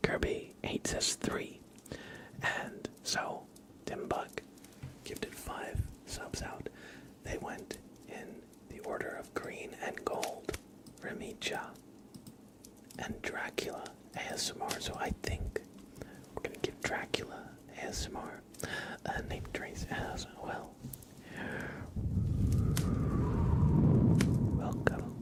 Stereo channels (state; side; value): identical; both; correlation 1.00